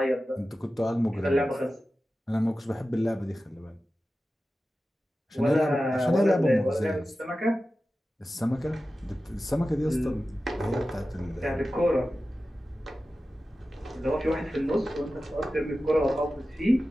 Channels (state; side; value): normal; both; correlation 0.94